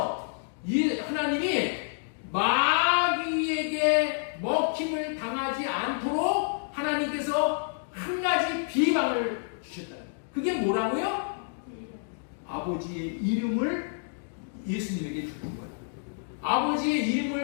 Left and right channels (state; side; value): silent; right; digital silence